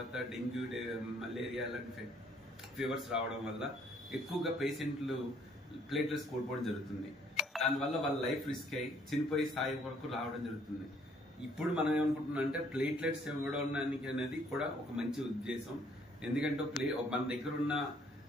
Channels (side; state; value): both; normal; correlation 0.64